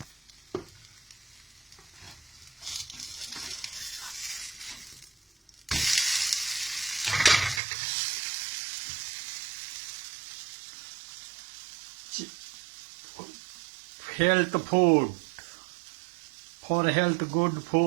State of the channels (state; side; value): drops out; left; at 7.6 s